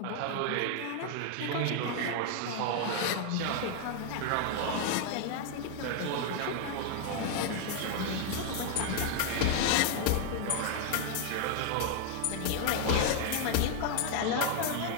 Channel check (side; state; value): both; different; correlation 0.00